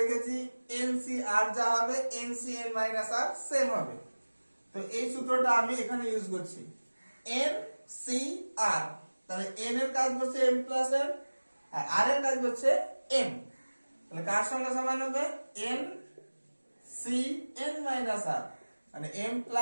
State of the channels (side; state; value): both; inverted; correlation -1.00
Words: n c r যা হবে n c n minus r same হবে। তো এই সূত্রটা আমি এখানে ইউজ করছি, n c r। তাহলে n এর কাজ হচ্ছে m প্লাস n, আর r এর কাজ হচ্ছে m। তাহলে কার সঙ্গে সমান হবে, n c n minus r, মানে m